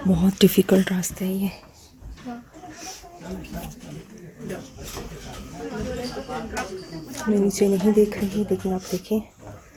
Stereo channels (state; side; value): identical; both; correlation 1.00